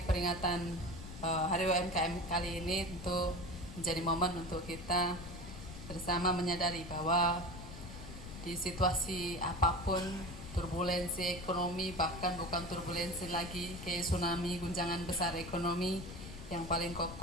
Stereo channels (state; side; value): noise; left; rumble, 11 dB below the sound